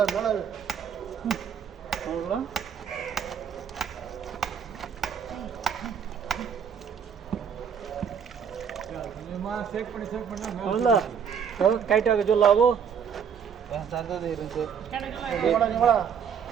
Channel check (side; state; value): left; quieter; 7.5 dB